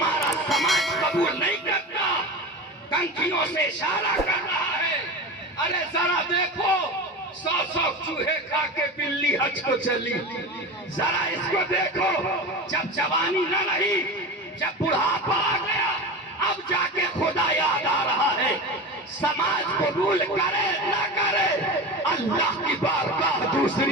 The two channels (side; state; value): both; normal; correlation 0.27